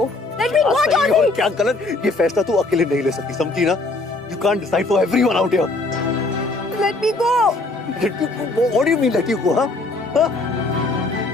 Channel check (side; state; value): right; quieter; 3.1 dB